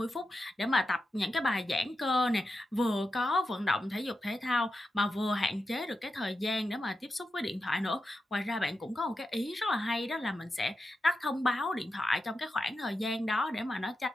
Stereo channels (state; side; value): normal; both; correlation 0.89